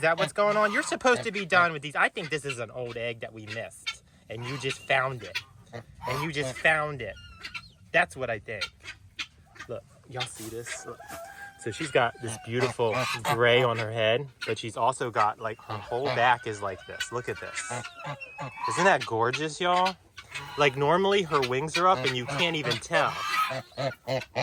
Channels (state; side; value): identical; both; correlation 1.00